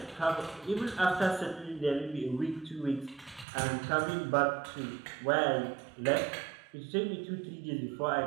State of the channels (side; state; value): left; drops out; at 3.5 s